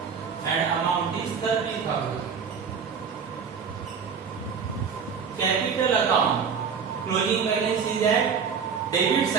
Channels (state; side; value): quieter; left; 6.4 dB